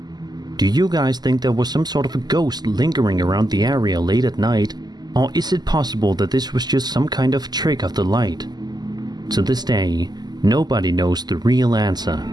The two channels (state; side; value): late; left; 0.20 ms